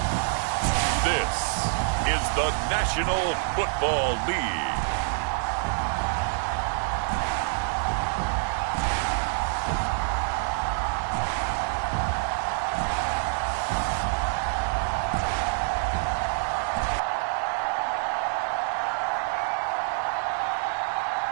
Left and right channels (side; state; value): left; silent; 60 dB below the other